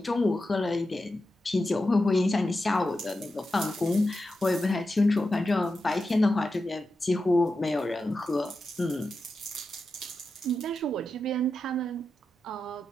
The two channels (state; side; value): normal; both; correlation 0.90